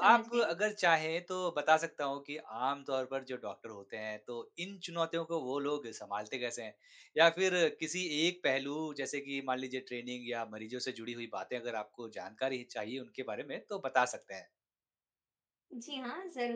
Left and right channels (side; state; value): both; identical; correlation 1.00